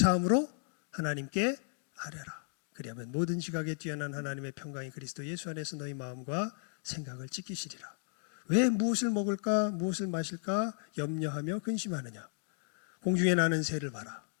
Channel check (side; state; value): right; silent; 55 dB below the other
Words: 하나님께 아뢰라. 그리하면 모든 지각에 뛰어난 하나님의 평강이 그리스도 예수 안에서 너희 마음과 생각을 지키시리라. 왜 무엇을 먹을까 무엇을 마실까 염려하며 근심하느냐. 공중에 나는 새를 봐라.